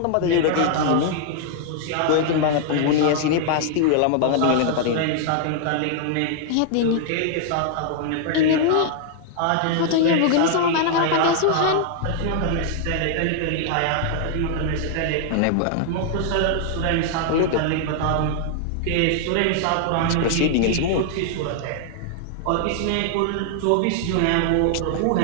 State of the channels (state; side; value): different; both; correlation 0.00